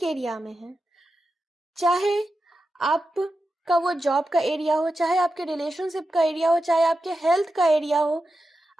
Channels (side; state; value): both; normal; correlation 0.90